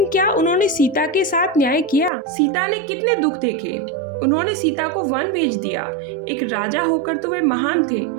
क्या उन्होंने सीता के साथ न्याय किया? सीता ने कितने दुख देखे? उन्होंने सीता को वन भेज दिया। एक राजा होकर तो वे महान थे,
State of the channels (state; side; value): drops out; left; at 2.1 s